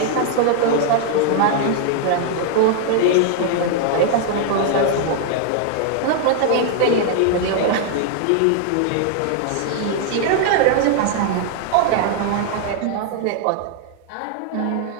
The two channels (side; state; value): both; different; correlation 0.00